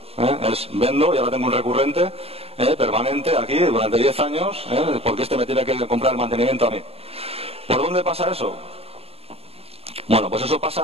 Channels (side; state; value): left; late; 0.29 ms